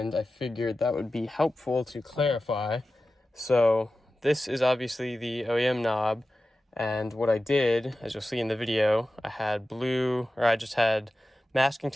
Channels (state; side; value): normal; both; correlation 0.94